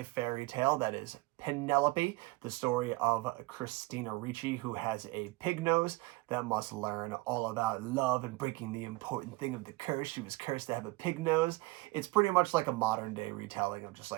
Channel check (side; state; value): left; quieter; 21.9 dB